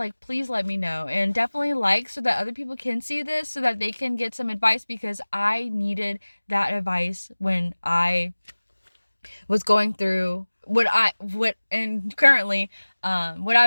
please let me know. And definitely like, so that other people can see this, so that they can get some advice, because I needed that advice when I was going through what I was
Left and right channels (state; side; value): inverted; both; correlation -1.00